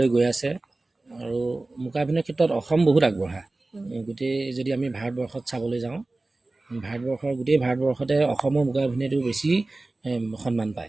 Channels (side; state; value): left; quieter; 3.1 dB